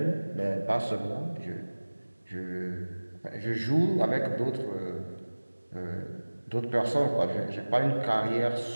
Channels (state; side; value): inverted; both; correlation -1.00